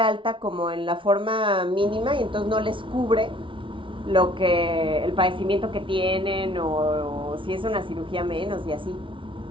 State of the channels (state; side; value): late; left; 0.25 ms